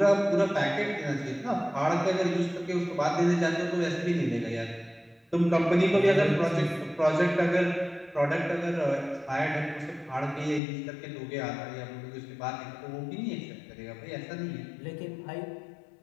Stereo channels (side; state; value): right; drops out; at 10.6 s